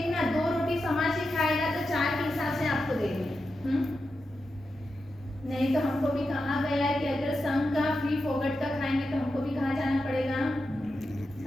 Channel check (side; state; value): both; normal; correlation 0.89